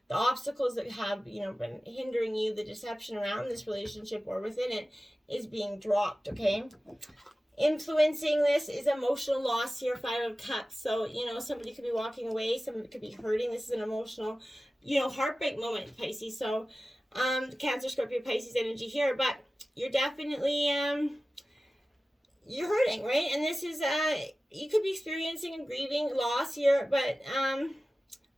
the obstacles that have, been hindering you, the deception around this relationship or within it is being dropped, okay? Influencing this is emotional loss here, 5 of Cups. So, somebody could be walking away, somebody could be hurting. This is an emotional, heartbreak moment, Pisces. So, Cancer, Scorpio, Pisces energy here. But you're definitely, you're hurting, right? And this is, you could be experiencing and grieving loss here, but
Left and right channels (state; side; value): normal; both; correlation 0.96